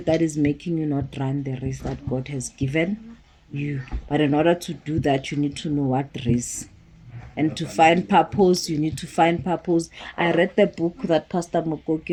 that is making you not run the race that God has given you. But in order to do that, you need to know what race. And to find purpose, you need to find purpose. I read the book that Pastor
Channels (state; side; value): identical; both; correlation 1.00